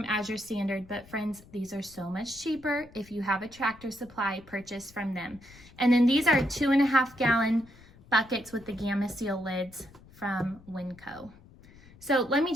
Azure Standard, but friends, these are so much cheaper if you have a Tractor Supply purchase from them. And then these are 2.5-gallon buckets with the Gamma Seal lids from Winco. So let me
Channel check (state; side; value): noise; left; rumble, 23 dB below the sound